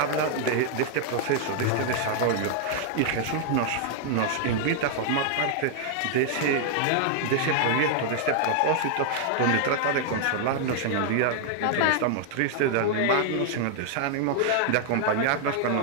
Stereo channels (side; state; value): both; different; correlation 0.00